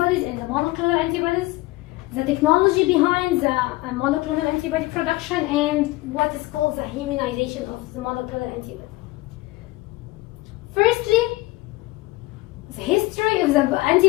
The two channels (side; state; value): right; quieter; 20.2 dB